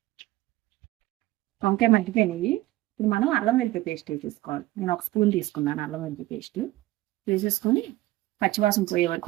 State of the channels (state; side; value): quieter; left; 17.1 dB